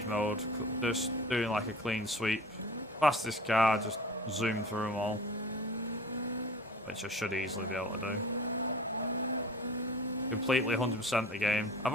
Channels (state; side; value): normal; both; correlation 0.41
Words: mode, just doing like a clean sweep. Fastest car, just zoom through them all. Which I should easily be able to do. Completely 100% the game.